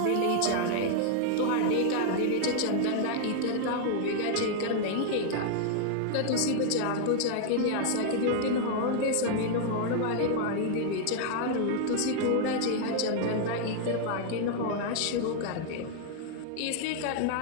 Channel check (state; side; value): different; both; correlation 0.00